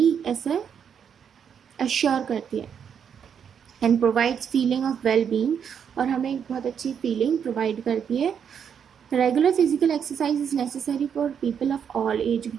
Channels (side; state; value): left; quieter; 7.7 dB